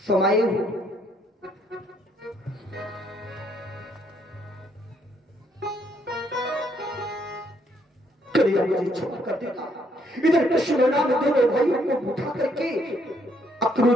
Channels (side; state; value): both; normal; correlation 0.70